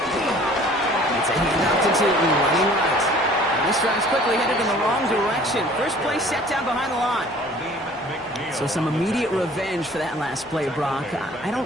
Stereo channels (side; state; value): both; normal; correlation 0.51